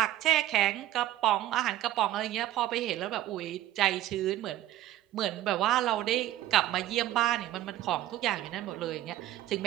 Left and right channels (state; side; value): quieter; left; 13.9 dB